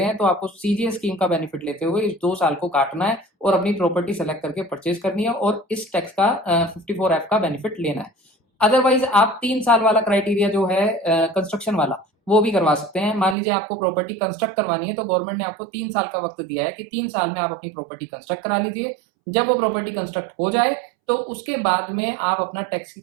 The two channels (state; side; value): drops out; left; at 13.4 s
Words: हैं तो आपको CGS स्कीम का बेनिफिट लेते हुए इस 2 साल को काटना है और अपनी प्रॉपर्टी सेलेक्ट करके परचेज करनी है और इस टैक्स का 54F का बेनिफिट लेना है। अदरवाइज आप 3 साल वाला क्राइटेरिया जो है कंस्ट्रक्शन वाला वो भी करवा सकते हैं। मान लीजिए आपको प्रॉपर्टी कंस्ट्रक्ट करवानी है तो गवर्नमेंट ने आपको 3 साल का वक्त दिया है कि 3 साल में आप अपनी प्रॉपर्टी कंस्ट्रक्ट करा लीजिए। जब वो प्रॉपर्टी कंस्ट्रक्ट हो जाए तो उसके बाद में आप अपना टैक्स की